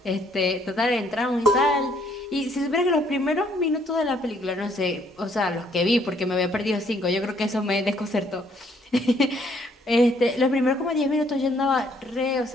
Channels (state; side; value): normal; both; correlation 0.66